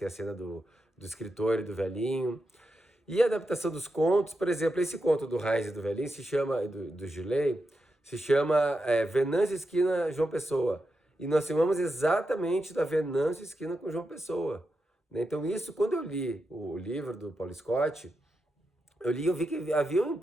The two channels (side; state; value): both; normal; correlation 0.87